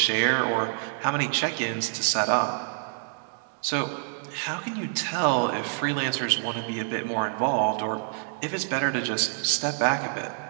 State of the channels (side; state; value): left; silent; 60 dB below the other